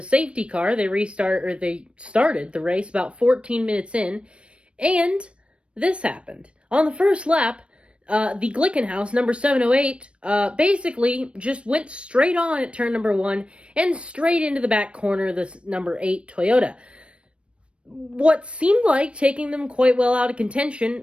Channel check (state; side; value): late; left; 0.059 ms